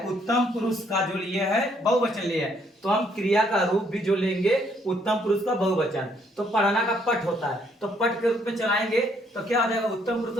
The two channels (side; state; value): both; normal; correlation 0.68